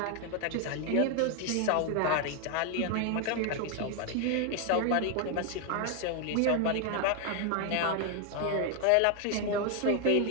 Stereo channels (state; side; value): different; both; correlation 0.00